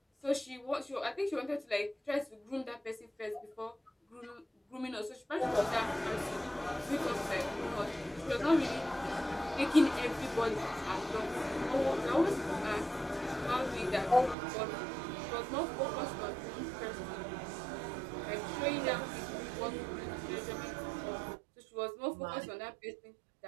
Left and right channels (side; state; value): left; drops out; at 14.4 s